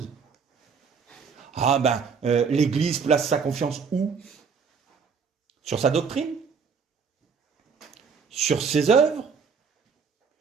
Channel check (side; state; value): left; quieter; 5.9 dB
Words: Ah ben, l'Église place sa confiance où? Sur sa doctrine? Sur ses œuvres?